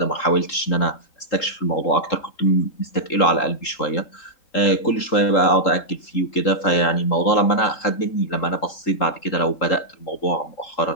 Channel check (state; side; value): late; right; 3.8 ms